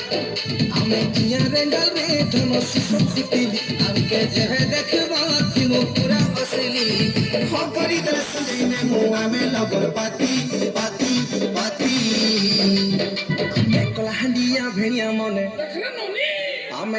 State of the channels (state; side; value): identical; both; correlation 1.00